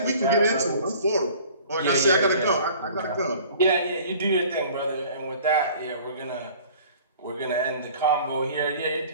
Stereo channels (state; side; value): inverted; both; correlation -0.48